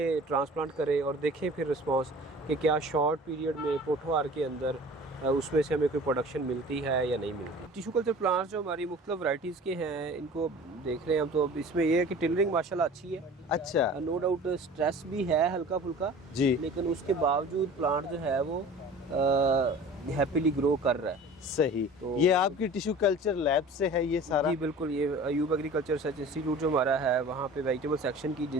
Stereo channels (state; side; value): normal; both; correlation 0.42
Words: ट्रांसप्लांट करें और देखें फिर रिस्पांस कि क्या शॉर्ट पीरियड में पोठोहार के अंदर उसमें से हमें कोई प्रोडक्शन मिलती है या नहीं मिलती। टिश्यू कल्चर प्लांट्स जो हमारी मुख्तलिफ वैरायटीज़ के हैं इनको देख रहे हैं हम, तो अब इसमें ये है कि टिलरिंग माशाल्लाह अच्छी है। अच्छा। नो डाउट स्ट्रेस भी है हल्का फुल्का जी। लेकिन उसके बावजूद प्लांट जो है वो हैप्पीली ग्रो कर रहा है। सही। तो ये आपकी टिश्यू कल्चर लैब से है ये सारा? जी बिल्कुल, ये अयूब एग्रीकल्चर रिसर्च इंस्टीट्यूट जो हमारा है वहाँ पे वेजिटेबल सेक्शन की